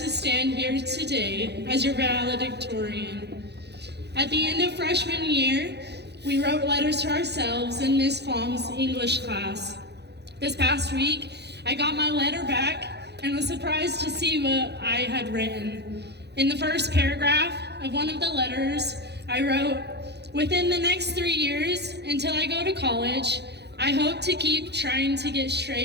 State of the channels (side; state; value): left; late; 0.49 ms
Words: stand here today as your valedictorian. At the end of freshman year, we wrote letters to ourselves in Ms. Fong's English class. This past week, I got my letter back and was surprised to see what I had written. In the first paragraph of one of the letters, I wrote, "Within the next 3 years, until I go to college, I hope to keep trying to get